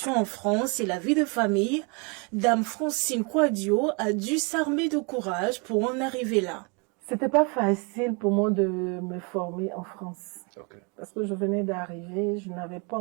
en France et la vie de famille, Dame Francine Quadio a dû s'armer de courage pour en arriver là. C'était pas facile pour moi de me former en France. Okay. Parce que je venais d'arriver, je n'avais pas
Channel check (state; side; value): quieter; left; 32.8 dB